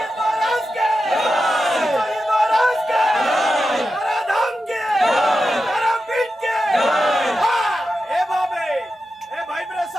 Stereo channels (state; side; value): normal; both; correlation 0.90